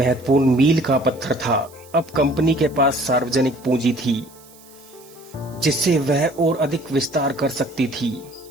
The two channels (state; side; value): noise; right; hiss, 24 dB below the sound